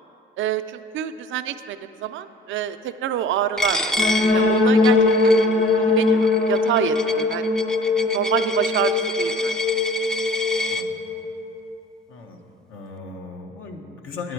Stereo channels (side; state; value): both; normal; correlation 0.46